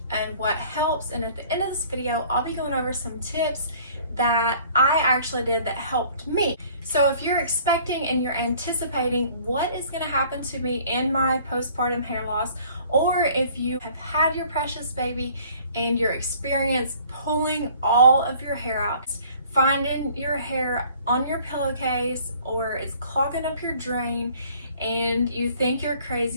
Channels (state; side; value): inverted; both; correlation -0.54